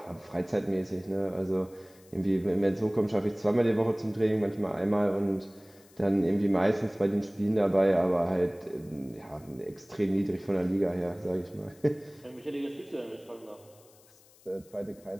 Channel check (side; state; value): left; noise; hiss, 27 dB below the sound